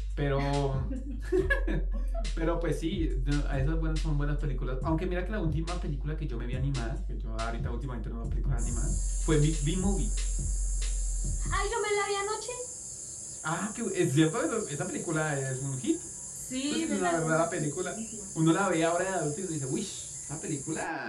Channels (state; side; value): identical; both; correlation 1.00